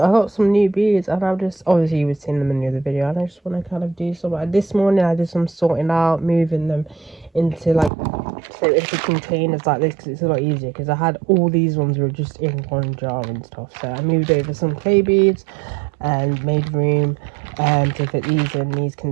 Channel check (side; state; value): left; drops out; at 7.9 s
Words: got some new beads, and I've just, obviously you were seeing them in the other video, and I just want to kind of do some. This morning I did some sorting out, moving them into like, so into containers like this, because it's a lot easier, because I had all these ones were just in one jar and stuff. So I moved over some clay beads and made room to fit these in these